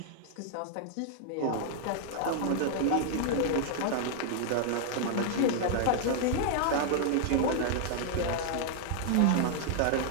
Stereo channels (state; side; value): different; both; correlation 0.00